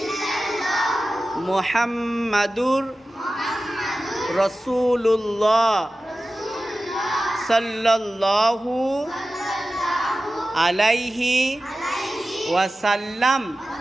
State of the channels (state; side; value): normal; both; correlation 0.95